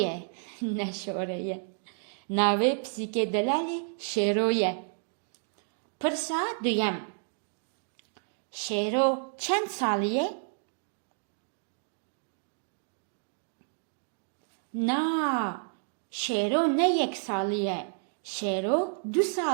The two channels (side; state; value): left; silent; 57 dB below the other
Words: نە شۆرەیە. ناوەی پسیکە دەلالێ شێرۆیە. پرسا دوویەم. شێرۆ چەند ساڵیە؟ نا شێرۆ نە 1 ساڵیە. شێرۆ 2